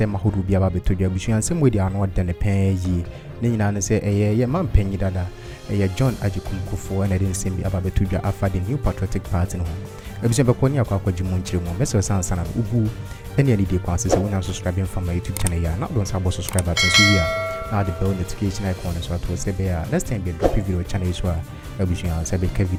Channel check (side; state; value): both; identical; correlation 1.00